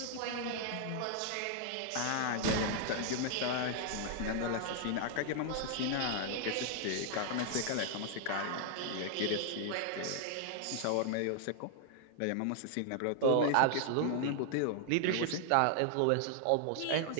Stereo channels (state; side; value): different; both; correlation 0.00